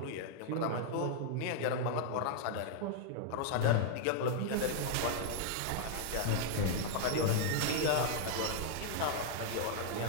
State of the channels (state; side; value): different; both; correlation 0.00